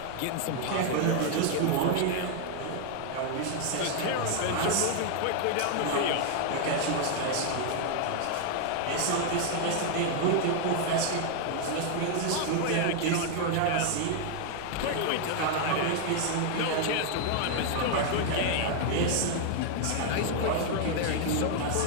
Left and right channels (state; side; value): different; both; correlation 0.00